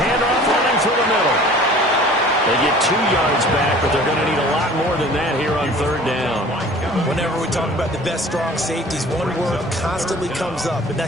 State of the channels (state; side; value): normal; both; correlation 0.47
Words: handoff running through the middle. They get 2 yards back, but they're going to need a lot more than that here on 3rd down. Whenever we talk about the best strong safeties, one word constantly comes up, and